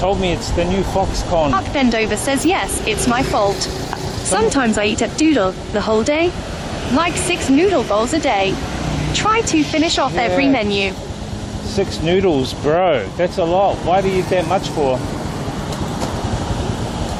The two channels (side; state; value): both; identical; correlation 1.00